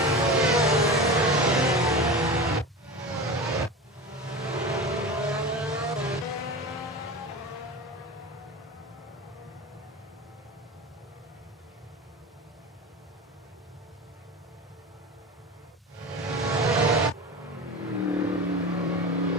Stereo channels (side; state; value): both; normal; correlation 0.29